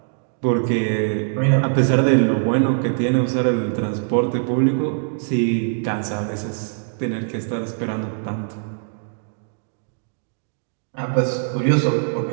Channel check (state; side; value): silent; left; digital silence